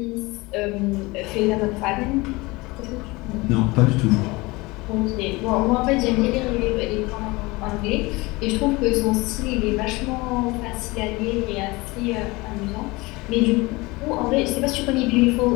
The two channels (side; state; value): right; quieter; 23.1 dB